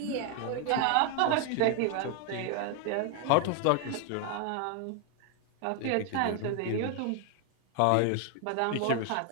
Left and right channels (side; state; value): both; different; correlation 0.01